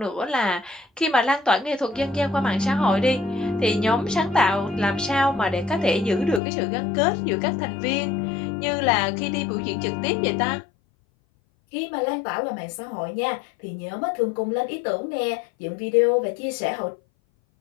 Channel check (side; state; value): right; drops out; at 6.4 s